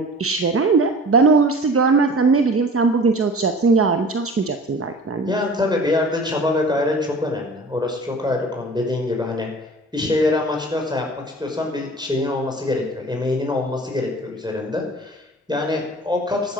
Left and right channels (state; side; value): normal; both; correlation 0.42